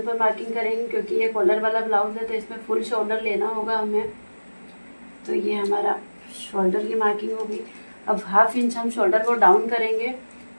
पर मार्किंग करेंगे क्योंकि ये कॉलर वाला ब्लाउज है तो इसमें फुल शोल्डर लेना होगा हमें। तो ये हमारा शोल्डर की मार्किंग होगी। अब हाफ इंच हम शोल्डर को डाउन करेंगे,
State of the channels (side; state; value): both; inverted; correlation -1.00